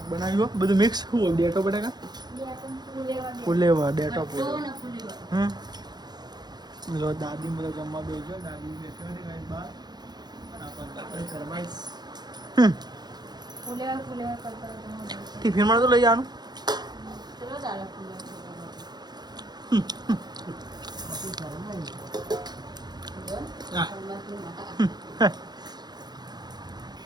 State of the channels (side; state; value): left; late; 0.20 ms